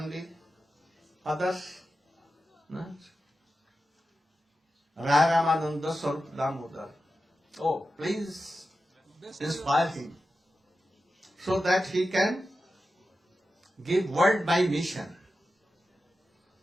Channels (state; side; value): normal; both; correlation 0.92